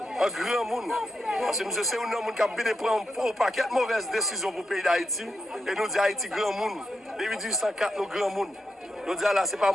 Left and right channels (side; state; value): both; normal; correlation 0.85